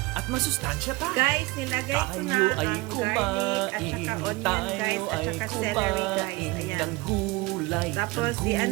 at masustansya pa. Guys, nilagay ko na Tayo ay ang garlic at saka onion guys at saka celery guys. Ayan. ng gulay, Tapos,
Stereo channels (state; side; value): quieter; left; 22.6 dB